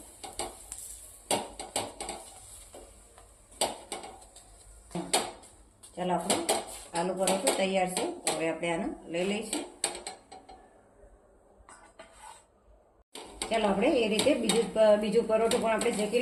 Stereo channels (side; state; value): both; identical; correlation 1.00